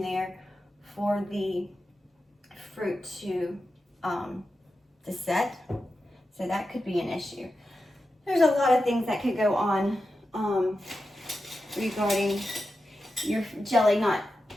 there for the fruit to set. So that could be an issue. There's a lot of things that could go on regarding your jelly not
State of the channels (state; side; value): normal; both; correlation 0.90